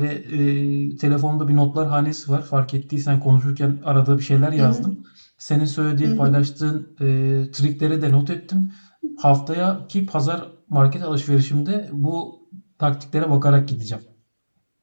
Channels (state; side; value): inverted; both; correlation -1.00